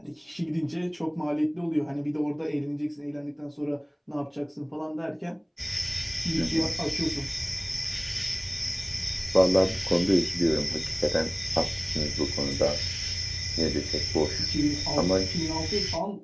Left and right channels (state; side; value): identical; both; correlation 1.00